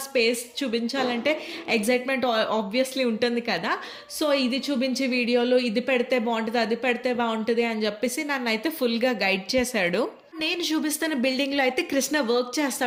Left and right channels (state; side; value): identical; both; correlation 1.00